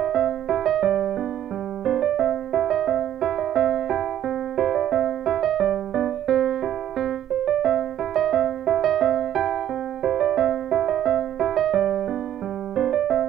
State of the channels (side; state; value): left; quieter; 11.2 dB